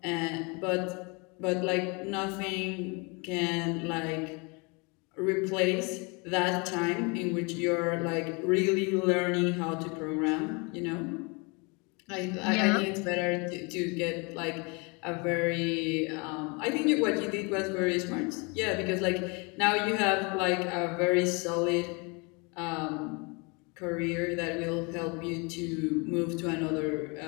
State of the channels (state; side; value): quieter; right; 30.2 dB